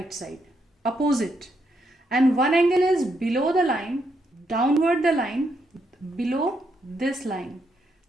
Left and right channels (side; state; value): both; normal; correlation 0.78